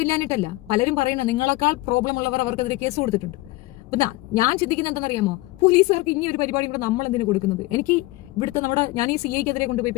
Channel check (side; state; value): right; quieter; 20.1 dB